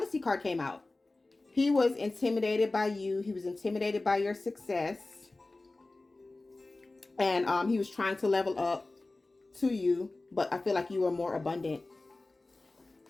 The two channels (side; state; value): right; quieter; 3.1 dB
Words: card came out. He was intimidated by you. He was intimidated by your success. And he was trying to level up to you, but I feel like you were more abundant.